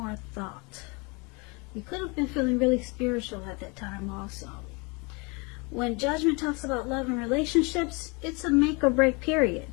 thought. You could have been feeling really spiritual at that time also. When Judgment talks about love and relationships, it's a make or break period.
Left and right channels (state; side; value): quieter; right; 29.5 dB